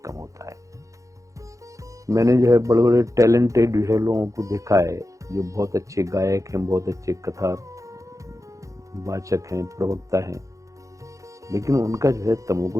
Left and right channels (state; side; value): late; left; 0.15 ms